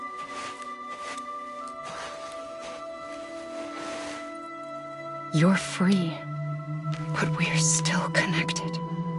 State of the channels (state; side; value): identical; both; correlation 1.00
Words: You're free, but we're still connected.